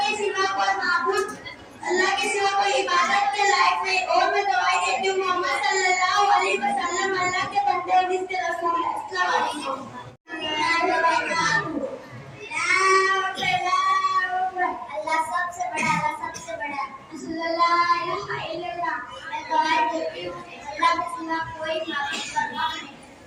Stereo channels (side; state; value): both; identical; correlation 1.00